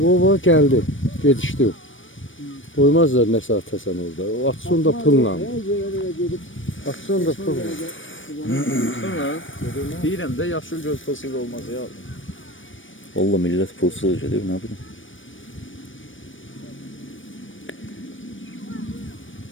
O geldi. Yetişti o. Koymazlar ne saate sen orada. O atsın da pılla. Atsın da pılla. Sonra deyirəm də yaşıl göz fosili olmaz ya. Valla millət pulsuz gedir, nə bilim.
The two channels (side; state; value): right; late; 0.56 ms